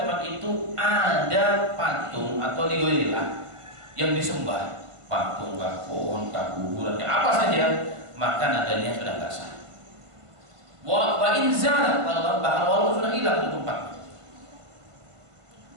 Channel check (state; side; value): late; left; 1.5 ms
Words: itu ada patung atau ligoilah yang disembah, patung, pohon, kuburan, apa saja, maka nadarnya sudah nggak sah. Wa inzal, bahkan walaupun sudah hilang di tempat.